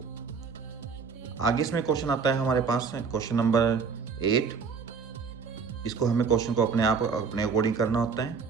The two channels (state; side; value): quieter; left; 5.6 dB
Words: आगे इसमें क्वेश्चन आता है हमारे पास क्वेश्चन नंबर 8। इसको हमें क्वेश्चन को अपने अकॉर्डिंग करना होता है।